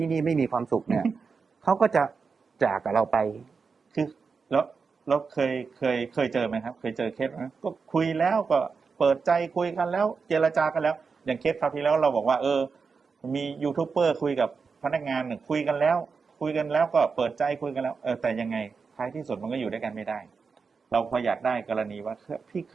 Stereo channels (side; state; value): left; quieter; 5.1 dB